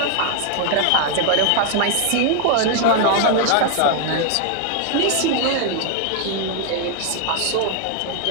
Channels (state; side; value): different; both; correlation 0.00